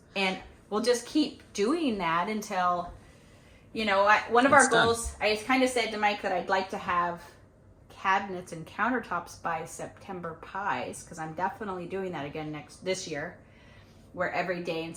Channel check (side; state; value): both; identical; correlation 1.00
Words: we'll just keep doing that until, you know, one of our goals, I kind of said to Mike that I'd like to have cabinets and countertops by September pies, because I'm definitely doing that again this year, where every day in